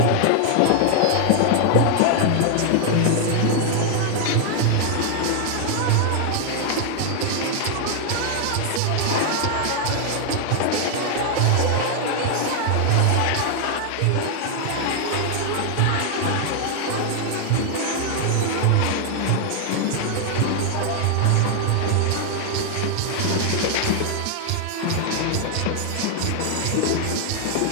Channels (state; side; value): different; both; correlation 0.00